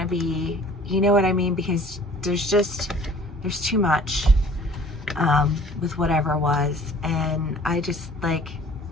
be, you know what I mean? Because there's too much with whatever was. And I just, like,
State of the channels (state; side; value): normal; both; correlation 0.51